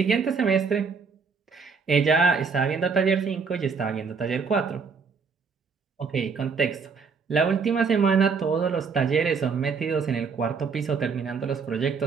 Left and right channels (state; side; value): quieter; left; 5.3 dB